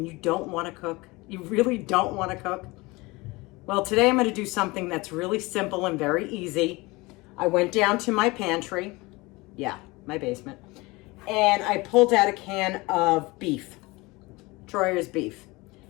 you don't want to cook? You really don't want to cook? Well, today I'm going to do something that's really simple and very easy. I went down to my pantry, my basement, and I pulled out a can of beef, Troyer's beef.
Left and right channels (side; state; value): right; quieter; 23.2 dB